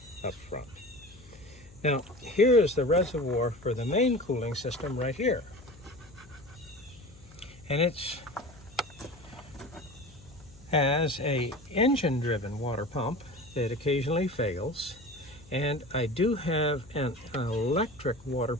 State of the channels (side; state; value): left; noise; hum, 23 dB below the sound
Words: up front. Now, here is the reservoir for the main cooling system right here. And it has a engine-driven water pump that occasionally fails. And I do have an electric water